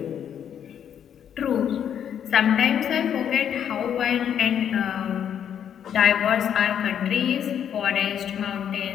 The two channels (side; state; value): right; quieter; 9.0 dB